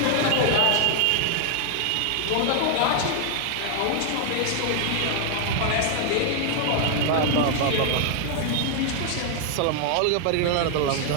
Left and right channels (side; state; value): both; different; correlation 0.00